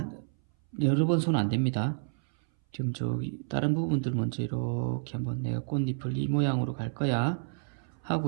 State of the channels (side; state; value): left; silent; 58 dB below the other